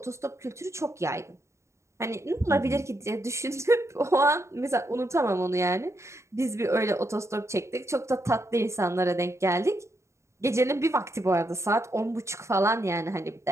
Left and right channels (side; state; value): left; late; 0.14 ms